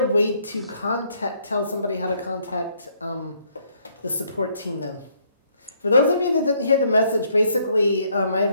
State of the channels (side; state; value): both; inverted; correlation -0.69